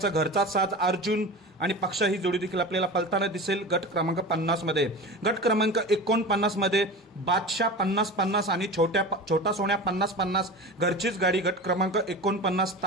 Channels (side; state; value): both; normal; correlation 0.31